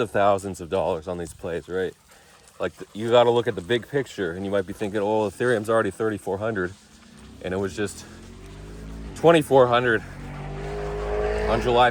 thousands of dollars on these plays, right? Like you got to look at the big picture, and you might be thinking, oh, Ethereum's already 3,400, and it was just 2,400 on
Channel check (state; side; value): identical; both; correlation 1.00